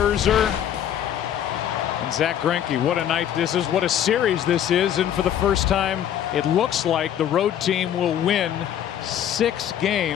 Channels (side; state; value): right; quieter; 10.2 dB